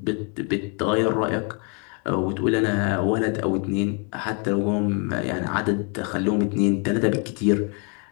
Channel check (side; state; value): right; quieter; 36.7 dB